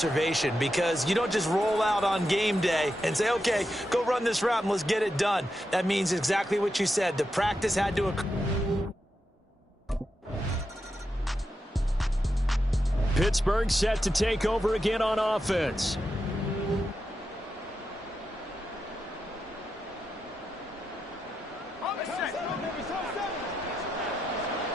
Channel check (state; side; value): normal; both; correlation 0.87